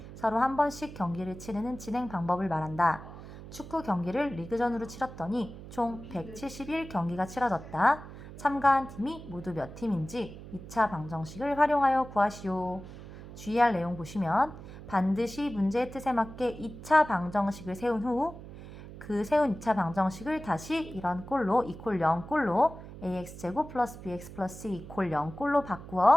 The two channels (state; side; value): noise; right; hum, 14 dB below the sound